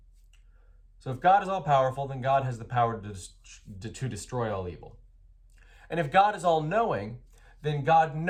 So if God is all-powerful, then God has the power to destroy all evil. And if God is all-knowing, then God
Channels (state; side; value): identical; both; correlation 1.00